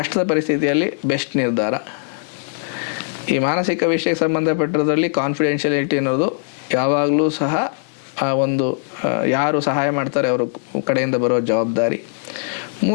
ಪರಿಸ್ಥಿತಿಯಲ್ಲಿ ಬೆಸ್ಟ್ ನಿರ್ಧಾರ. ಈ ಮಾನಸಿಕ ವಿಷಯಕ್ಕೆ ಸಂಬಂಧಪಟ್ಟಿರೋದ್ರಲ್ಲಿ ಕಾನ್ಫಿಡೆನ್ಷಿಯಾಲಿಟಿ ಅನ್ನೋದು ಯಾವಾಗಲೂ ಸಹ ಆ ಒಂದು ಯಾರು ಸಹಾಯ ಮಾಡ್ತಾರೆ ಅವ್ರ ಕಡೆಯಿಂದ ಬರೋ ಜವಾಬ್ದಾರಿ.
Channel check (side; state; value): right; silent; 66 dB below the other